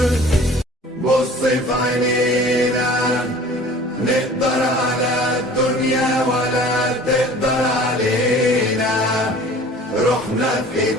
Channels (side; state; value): both; normal; correlation 0.46